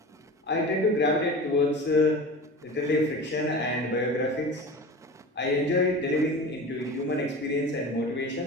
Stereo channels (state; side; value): normal; both; correlation 0.33